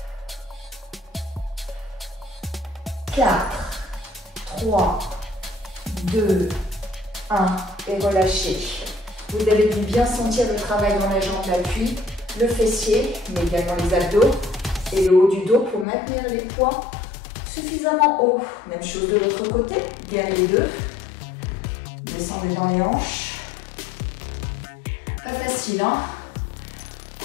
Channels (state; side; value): drops out; right; at 15.9 s